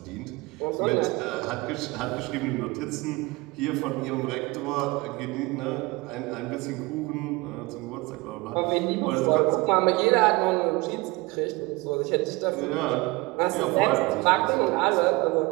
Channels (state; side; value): quieter; left; 23.6 dB